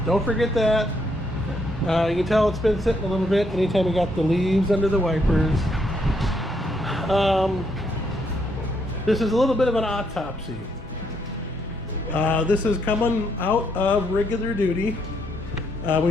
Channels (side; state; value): both; normal; correlation 0.74